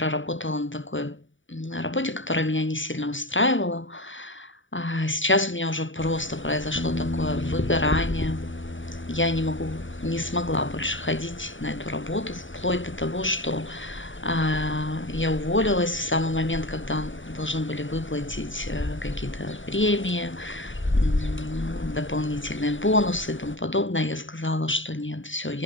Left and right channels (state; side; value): late; right; 0.56 ms